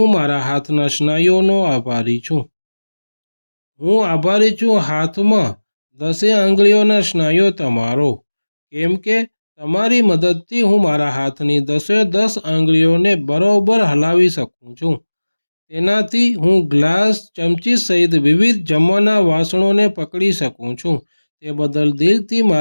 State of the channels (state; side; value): inverted; both; correlation -1.00